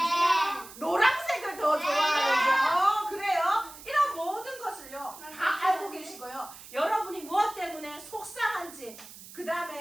노란색을 더 좋아하는지, 그래요. 이런 모든 것을요 다 알고 계시고요, 여러분이 무엇 때문에 속상한지, 그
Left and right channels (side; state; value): right; noise; hiss, 17 dB below the sound